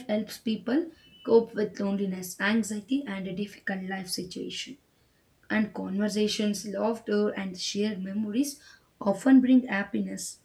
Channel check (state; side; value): identical; both; correlation 1.00